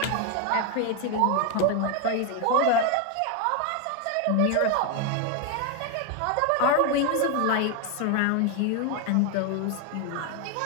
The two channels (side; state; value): both; different; correlation 0.01